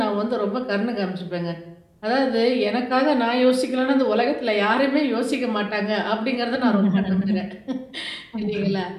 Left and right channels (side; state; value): both; identical; correlation 1.00